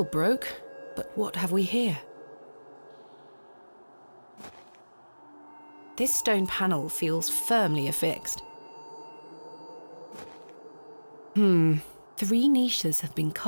broke, but what have we here? This stone panel feels firmly affixed. 3 niches have been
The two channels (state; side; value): inverted; both; correlation -1.00